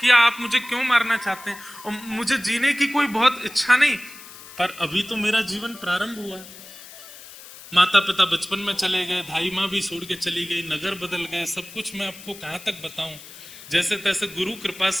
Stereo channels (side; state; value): left; noise; hiss, 17 dB below the sound